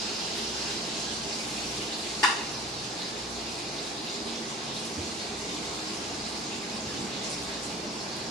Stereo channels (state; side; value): normal; both; correlation 0.41